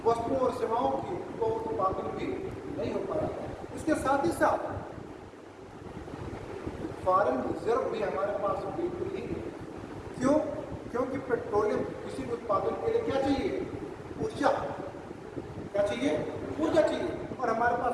वस्तुओं और सेवाओं की, वो उत्पादन भी नहीं हो पा रहा। इसके साथ ही साथ फॉरेन रिजर्व भी हमारे पास बिल्कुल ही नहीं। क्यों, क्योंकि पेट्रोलियम किसी भी उत्पादन के लिए क्या चाहिए, ऊर्जा। क्या चाहिए, ऊर्जा चाहिए, और हमारे पास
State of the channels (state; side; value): identical; both; correlation 1.00